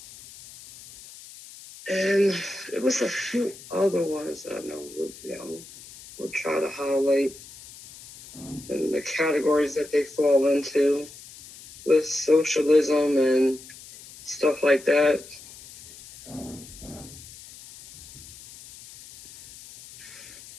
and it was a few other ones I know. We'll try to highlight and the categories that they fall into with socialism and stuff like that.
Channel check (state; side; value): noise; left; hiss, 18 dB below the sound